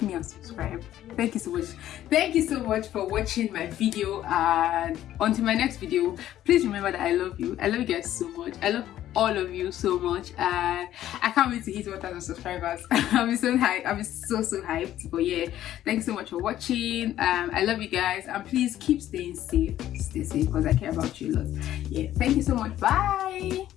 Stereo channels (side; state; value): right; quieter; 12.6 dB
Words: and subscribe. Thank you so much. Thank you so much for watching my video, and until my next video, please remember that I love you. I love you guys so much. I love all of you so much, and I can't wait to hit 1,000 subscribers. I'll be so hyped. I'll be so hyped. But yeah, thanks so much for watching. I love you guys, and please keep staying safe. Stay safe, because I care about you a lot. Yeah, thank you so much. Bye.